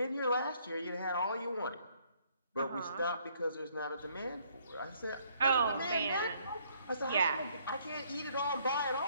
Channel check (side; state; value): both; inverted; correlation -0.65